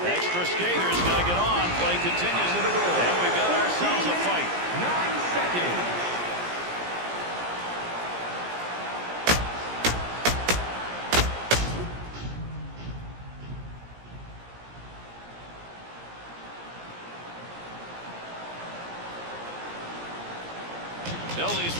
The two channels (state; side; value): late; left; 17 ms